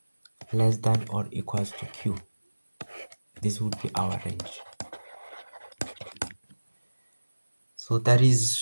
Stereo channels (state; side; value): inverted; both; correlation -1.00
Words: less than or equals to q. This would be our range. So that